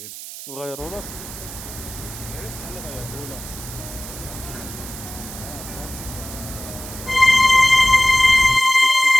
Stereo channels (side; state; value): right; noise; hiss, 12 dB below the sound